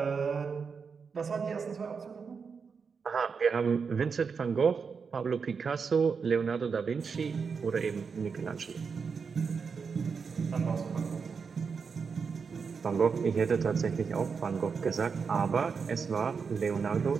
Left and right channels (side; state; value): left; quieter; 5.6 dB